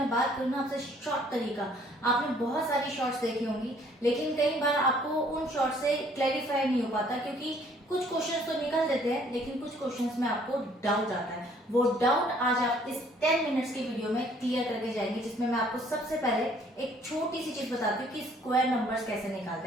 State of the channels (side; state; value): both; normal; correlation 0.60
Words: बात करूँ ना आपसे शॉर्ट तरीका, आपने बहुत सारी शॉर्ट्स देखी होंगी लेकिन कई बार आपको उन शॉर्ट से क्लैरिफाई नहीं हो पाता क्योंकि कुछ क्वेश्चंस तो निकल देते हैं लेकिन कुछ क्वेश्चंस में आपको डाउट आता है। वो डाउट आज आप इस 10 मिनट्स की वीडियो में क्लियर करके जाएंगे, जिसमें मैं आपको सबसे पहले एक छोटी सी चीज बताती हूँ कि स्क्वायर नंबर्स कैसे